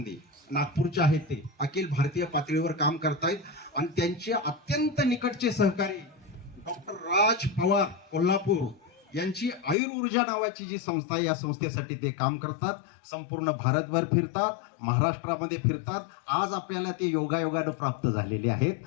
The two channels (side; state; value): right; drops out; at 9.8 s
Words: नागपूरचे आहेत, ते अखिल भारतीय पातळीवर काम करतायत आणि त्यांचे अत्यंत निकटचे सहकारी डॉक्टर राज पवार कोल्हापूर यांची आयुर्ऊर्जा नावाची जी संस्था आहे, या संस्थेसाठी ते काम करतात. संपूर्ण भारतभर फिरतात, महाराष्ट्रामध्ये फिरतात. आज आपल्याला ते योगायोगानं प्राप्त झालेले आहेत.